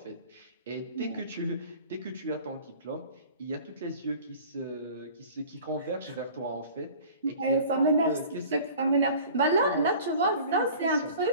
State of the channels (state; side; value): inverted; both; correlation -0.44